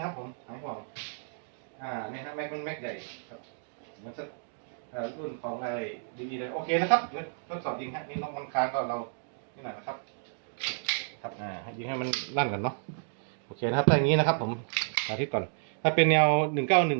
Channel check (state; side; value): silent; left; digital silence